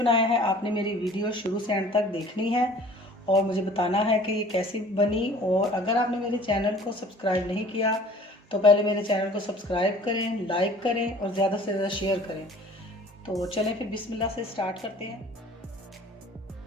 है, आपने मेरी वीडियो शुरू से एंड तक देखनी है और मुझे बताना है कि ये कैसी बनी। और अगर आपने मेरे चैनल को सब्सक्राइब नहीं किया तो पहले मेरे चैनल को सब्सक्राइब करें, लाइक करें और ज़्यादा से ज़्यादा शेयर करें। तो चलें फिर बिस्मिल्लाह से स्टार्ट करते हैं।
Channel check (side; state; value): both; normal; correlation 0.49